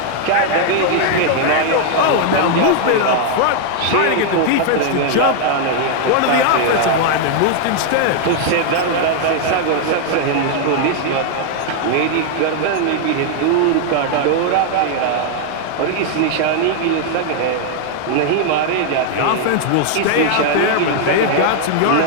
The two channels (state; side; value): different; both; correlation 0.00